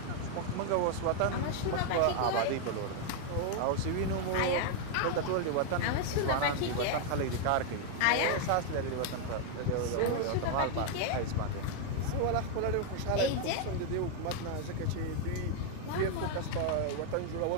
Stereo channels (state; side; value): different; both; correlation 0.00